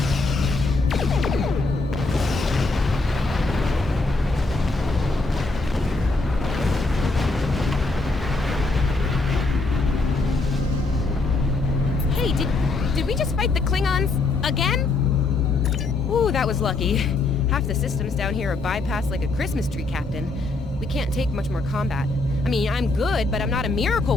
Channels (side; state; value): right; quieter; 3.4 dB